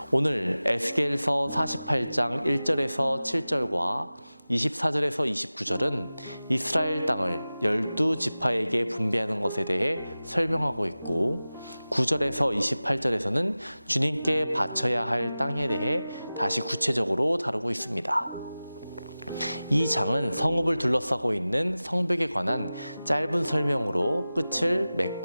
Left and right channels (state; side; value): inverted; both; correlation -0.96